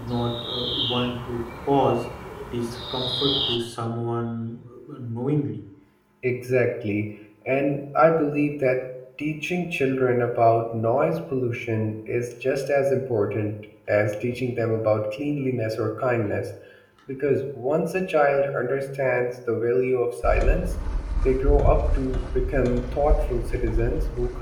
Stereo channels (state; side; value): identical; both; correlation 1.00